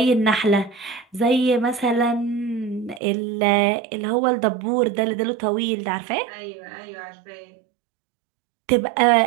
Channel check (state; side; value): drops out; left; at 3.0 s